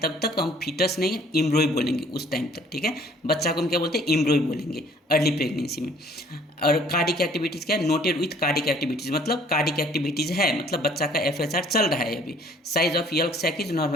तब तक हम फीटस नहीं, एम्ब्रॉय बोलेंगे उस टाइम तक। ठीक है, बच्चा को हम क्या बोलते हैं? एम्ब्रॉय बोलेंगे अर्ली प्रेगनेंसी में। और कार्डिक एक्टिविटीज़ क्या है? नोटेड विथ कार्डिक एक्टिविटीज़, मतलब कार्डिक एक्टिविटीज़ है, मतलब बच्चा का FHR चल रहा है अभी। Size of yolk sac is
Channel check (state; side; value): normal; both; correlation 0.57